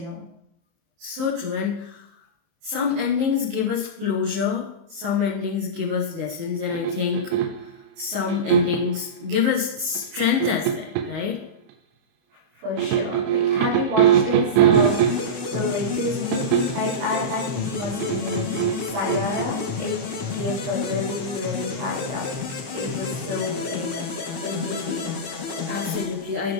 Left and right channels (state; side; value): late; left; 30 ms